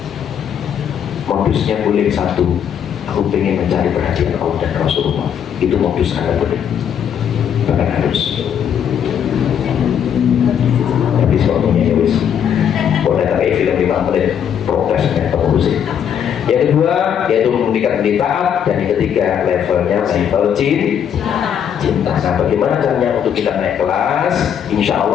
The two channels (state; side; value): quieter; right; 8.6 dB